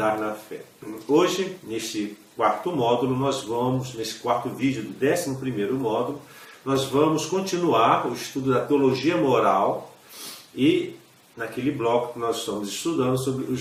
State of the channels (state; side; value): identical; both; correlation 1.00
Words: na fé. Hoje, neste quarto módulo, nesse quarto vídeo do 11º módulo, nós vamos continuar o estudo da teologia moral e naquele bloco que nós estamos estudando sobre